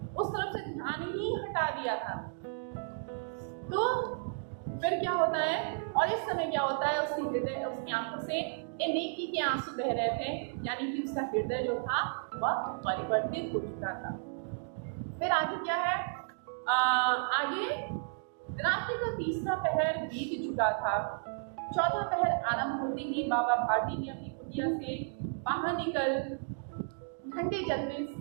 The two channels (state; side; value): silent; left; digital silence